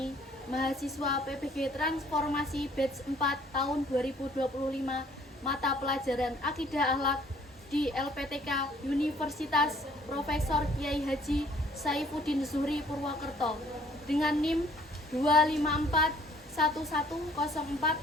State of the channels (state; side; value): normal; both; correlation 0.59